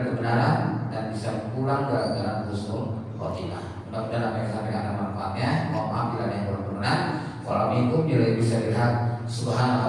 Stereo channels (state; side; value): identical; both; correlation 1.00